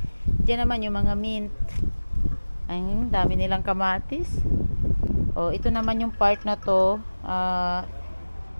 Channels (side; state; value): both; inverted; correlation -1.00